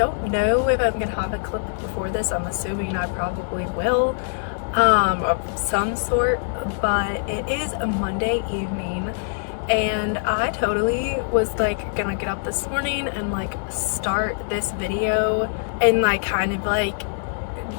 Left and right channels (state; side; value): silent; right; digital silence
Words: know if I'm gonna have a clip before this. I'm assuming I probably will, of some sort, but it is a Monday evening and I totally was like gonna get up this morning and like start this video and like kind of like